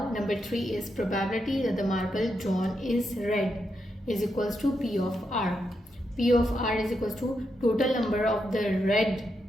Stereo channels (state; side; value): normal; both; correlation 0.83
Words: number 3 is probability that the marble drawn is red is equals to P of R. P of R is equals to total number of the red